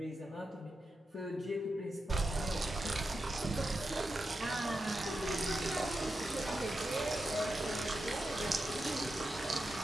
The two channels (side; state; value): both; normal; correlation 0.89